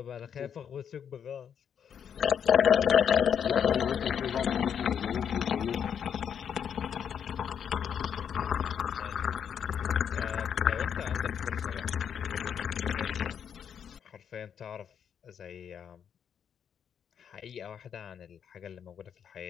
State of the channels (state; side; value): quieter; right; 8.1 dB